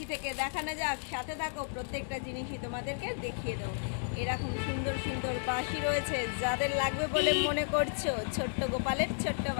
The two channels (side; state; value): right; silent; digital silence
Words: থেকে দেখানো যাক, সাথে থাকো, প্রত্যেকটা জিনিসই তোমাদেরকে দেখিয়ে দেবো। এরকম সুন্দর সুন্দর বাঁশি রয়েছে, যাদের লাগবে বলে মনে করছো ছোট্ট গোপালের ছোট্ট